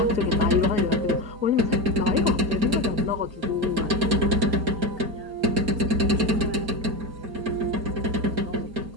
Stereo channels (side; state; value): left; late; 4.3 ms